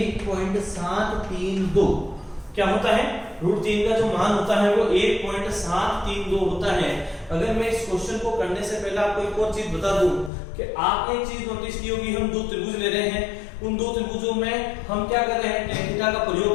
क्या होता है, √3 का जो मान होता है वो 1.732 होता है। अगर मैं इस क्वेश्चन को करने से पहले आपको एक और चीज बता दूं कि आपने एक चीज नोटिस की होगी, हम दो त्रिभुज ले रहे हैं, उन दो त्रिभुजों में हम क्या कर रहे हैं, tan थीटा का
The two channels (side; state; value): right; drops out; at 10.3 s